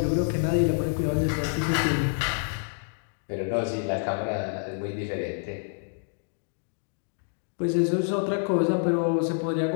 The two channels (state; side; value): silent; right; digital silence